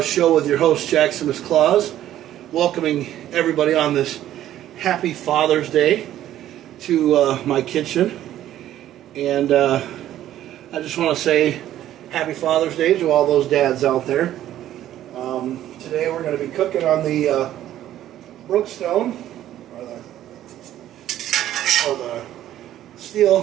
show with your host JakKlauZ. Welcoming everybody on this happy Father's Day to my kitchen. And I just want to say happy Father's Day to all those dads out there. Today we're going to be cooking on the Brookstone or the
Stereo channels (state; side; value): quieter; left; 12.5 dB